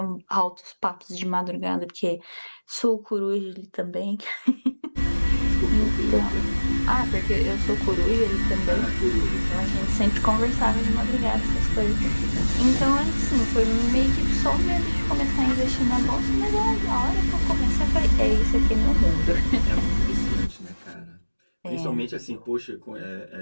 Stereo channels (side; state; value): both; inverted; correlation -1.00